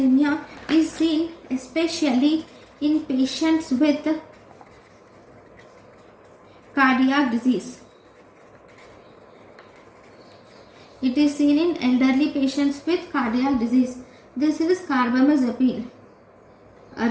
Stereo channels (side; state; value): both; identical; correlation 1.00